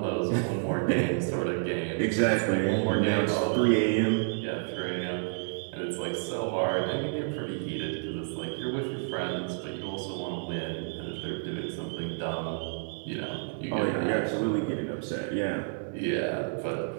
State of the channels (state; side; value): silent; left; digital silence